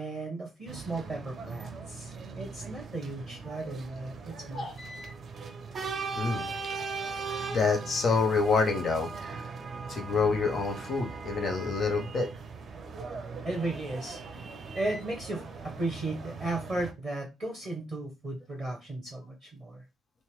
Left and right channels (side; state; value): both; normal; correlation 0.73